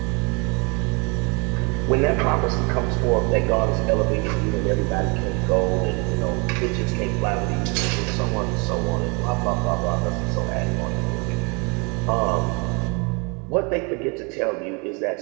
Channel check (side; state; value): left; quieter; 31.4 dB